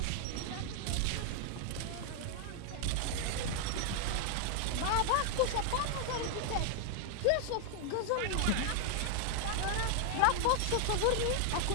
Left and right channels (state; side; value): different; both; correlation 0.00